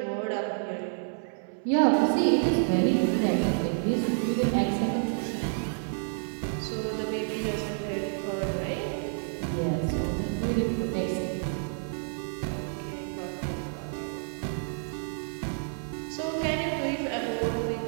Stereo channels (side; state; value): left; silent; 58 dB below the other